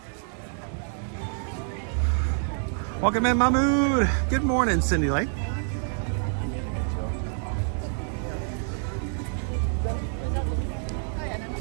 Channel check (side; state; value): left; silent; 57 dB below the other